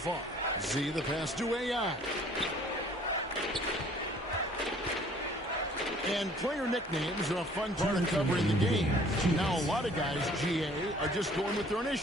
Z the pass to AI. And player nicknames are a fun part of covering the game. Now, a lot of guys, GA, are just going with their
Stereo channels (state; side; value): normal; both; correlation 0.55